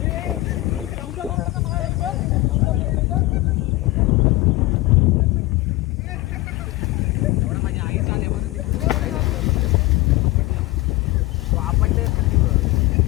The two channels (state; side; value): quieter; right; 19.6 dB